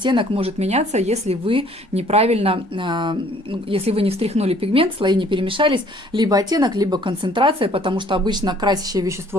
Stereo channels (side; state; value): both; normal; correlation 0.58